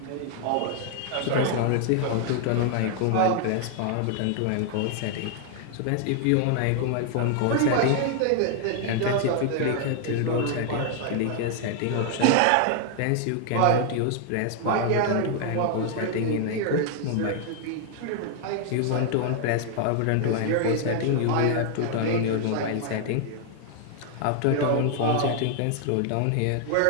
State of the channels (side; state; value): both; different; correlation 0.00